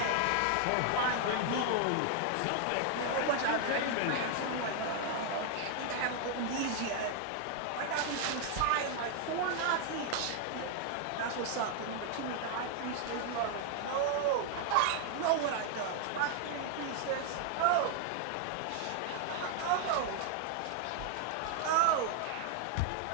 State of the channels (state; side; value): different; both; correlation 0.00